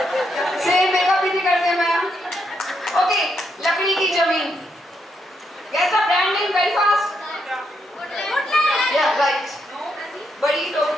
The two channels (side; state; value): both; normal; correlation 0.79